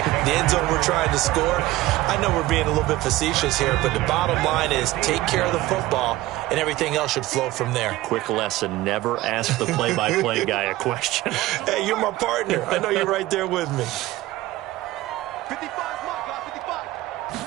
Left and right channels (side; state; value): left; quieter; 17.3 dB